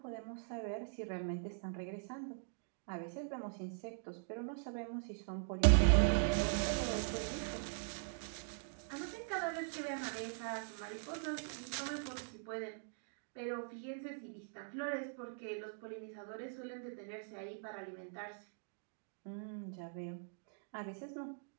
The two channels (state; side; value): silent; left; digital silence